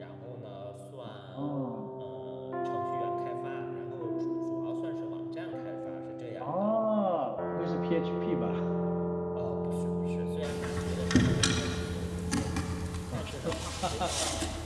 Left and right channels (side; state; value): both; identical; correlation 1.00